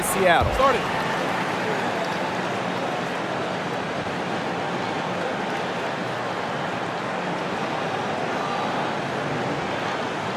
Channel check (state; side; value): identical; both; correlation 1.00